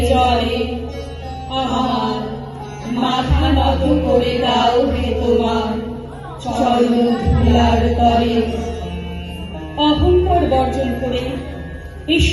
জলে। আমার মাথা নত করে দাও হে তোমার চরণ ধুলার তরে। অহংকার বর্জন করে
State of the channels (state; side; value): identical; both; correlation 1.00